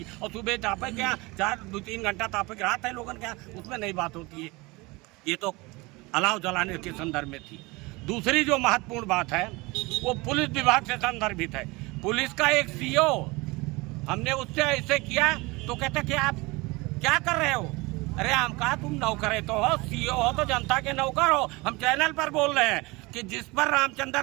और सुबह तापे क्या 2-3 घंटा तापे रात है लोगन क्या, उसमें नहीं बात होती है। ये तो अलाव जलाने के संदर्भ में थी। दूसरी जो महत्वपूर्ण बात है वो पुलिस विभाग से संदर्भित है। पुलिस का एक सीओ, हमने उससे ऐसे किया तो कहते कि आप क्या कर रहे हो? अरे हम कहा तुम नौकर तो हो, सीओ हो तो जनता के नौकर हो, हम चैनल पर बोल रहे हैं। कि जिस पर रामचंद्र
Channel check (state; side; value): quieter; left; 24.1 dB